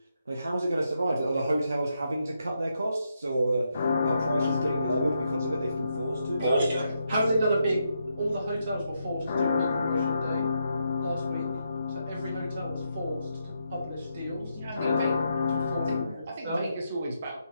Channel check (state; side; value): inverted; both; correlation -0.81